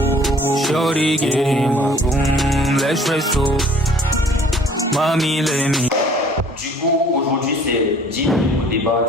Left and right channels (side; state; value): both; normal; correlation 0.54